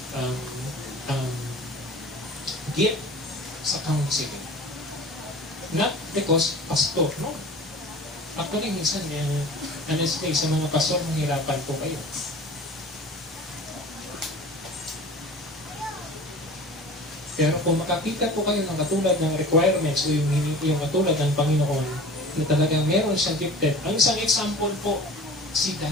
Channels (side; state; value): both; normal; correlation 0.40